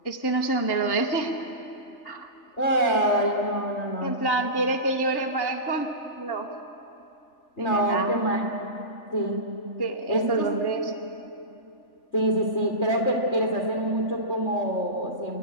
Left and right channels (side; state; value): right; late; 3.4 ms